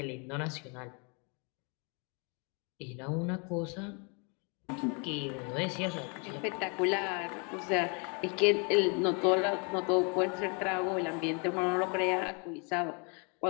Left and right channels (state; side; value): quieter; right; 34.6 dB